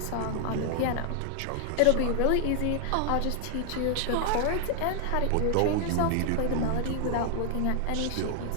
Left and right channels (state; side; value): different; both; correlation 0.00